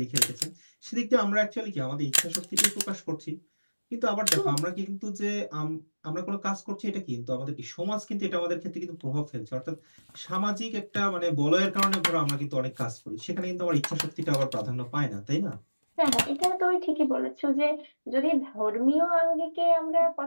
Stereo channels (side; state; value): both; inverted; correlation -1.00